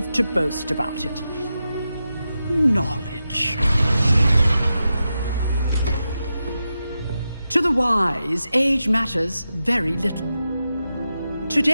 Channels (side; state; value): both; inverted; correlation -0.90